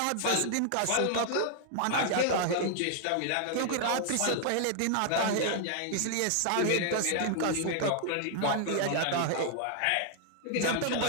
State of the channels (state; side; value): different; both; correlation 0.00